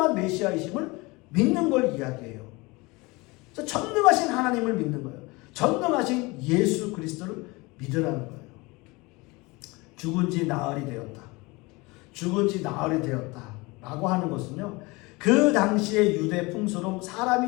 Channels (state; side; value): quieter; right; 24.3 dB